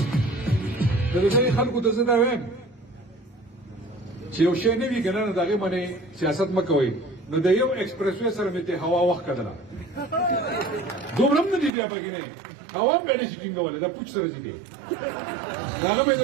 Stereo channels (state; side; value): drops out; left; at 11.7 s